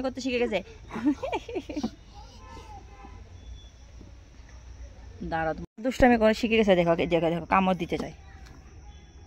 করতে শিখে গেছে। দাঁড়াও, দুষ্টুমি করে শিখে গেছে। দেখো দেখো দেখো, কামড় দিতে চাই।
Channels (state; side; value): identical; both; correlation 1.00